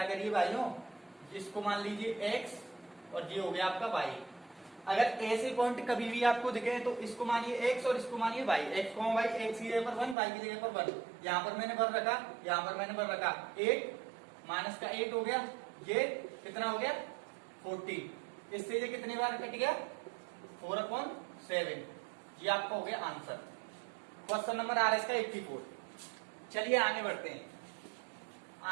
करिए भाइयों, इसको मान लीजिए x और ये हो गया आपका y। अगर ऐसे पॉइंट कभी भी आपको दिखे तो इसको मानिए x और इसको मानिए y, x को y, x की जगह पर 1, y की जगह पर 1। यहाँ पर मैंने भर रखा, यहाँ पर मैंने भर रखा 8 माइनस का 8 हो गया, ये कितना हो गया 14। इससे ये कितनी बार कट गया 4/7। ये आपका हो गया आंसर, क्वेश्चन नंबर RS का 84। चलिए आगे बढ़ते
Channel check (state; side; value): drops out; left; at 10.2 s